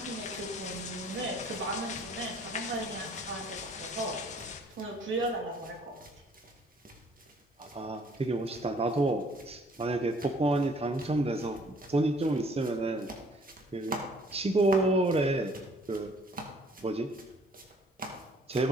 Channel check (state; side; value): normal; both; correlation 0.58